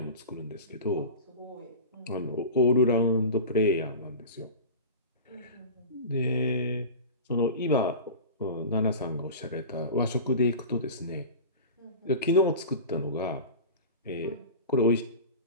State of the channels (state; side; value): inverted; both; correlation -0.32